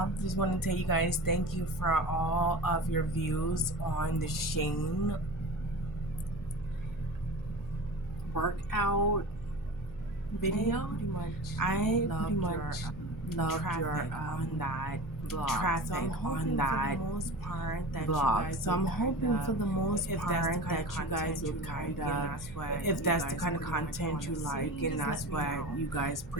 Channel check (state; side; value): noise; right; hum, 20 dB below the sound